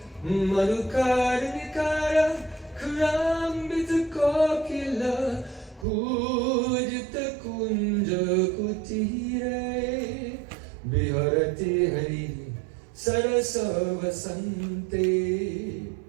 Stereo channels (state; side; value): drops out; left; at 5.9 s